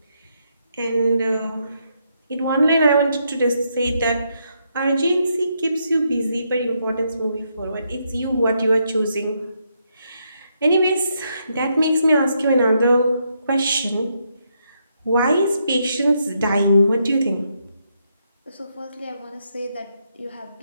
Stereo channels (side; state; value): both; inverted; correlation -0.78